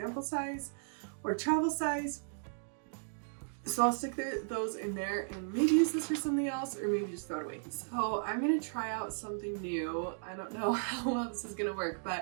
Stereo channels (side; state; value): left; silent; digital silence